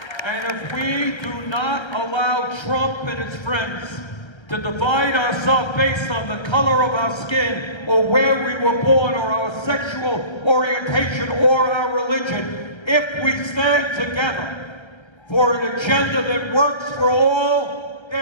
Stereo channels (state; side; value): late; right; 1.3 ms